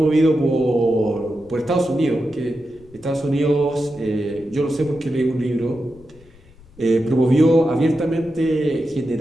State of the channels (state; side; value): noise; left; rumble, 25 dB below the sound